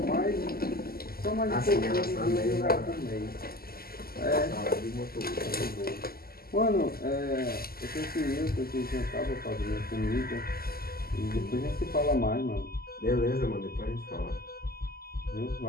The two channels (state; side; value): late; right; 0.44 ms